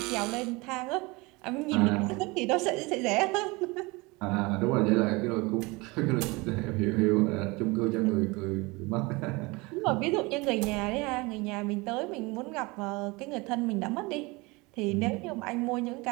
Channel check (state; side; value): quieter; left; 24.7 dB